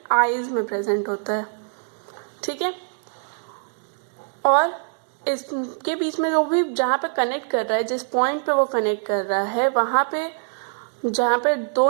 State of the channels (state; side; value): silent; left; digital silence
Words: eyes में प्रेजेंट होता है, ठीक है। और इसके बीच में जो भी जहाँ पे कनेक्ट कर रहा है, जिस पॉइंट पे वो कनेक्ट कर रहा है, वहाँ पे जहाँ पे 2